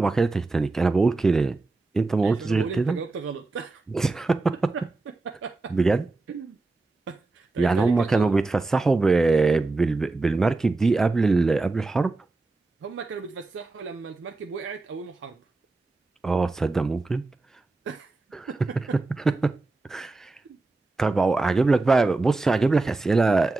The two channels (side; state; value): left; quieter; 3.4 dB